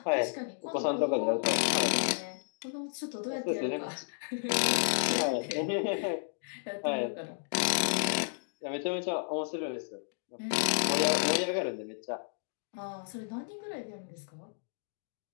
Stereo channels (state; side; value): silent; right; digital silence